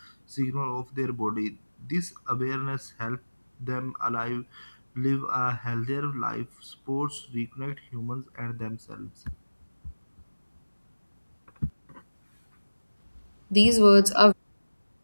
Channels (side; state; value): both; inverted; correlation -1.00